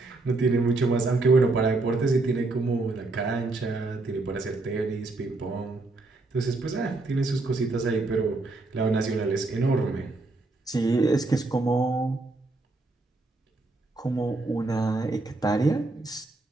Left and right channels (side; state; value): left; quieter; 3.2 dB